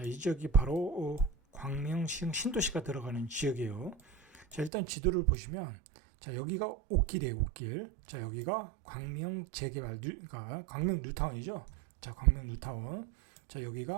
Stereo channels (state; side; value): drops out; left; at 4.7 s